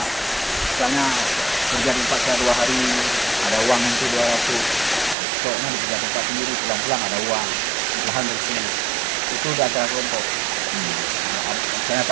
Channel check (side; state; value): left; drops out; at 5.2 s